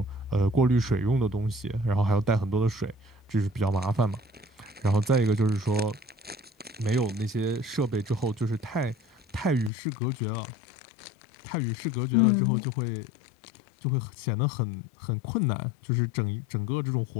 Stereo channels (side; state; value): right; drops out; at 9.7 s